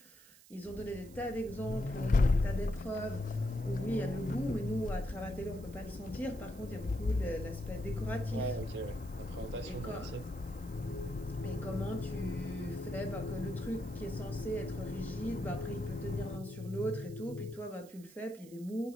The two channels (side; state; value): right; noise; hiss, 22 dB below the sound